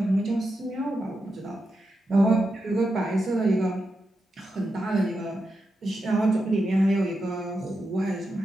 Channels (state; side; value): normal; both; correlation 0.87